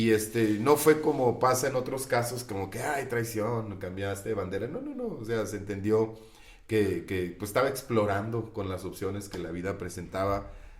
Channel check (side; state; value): both; identical; correlation 1.00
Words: no fue como pasa en otros casos, como que, ay, traición, cambiaste de bandera. No, o sea, se entendió que pues estaba explorando con las opciones que la vida presentaba.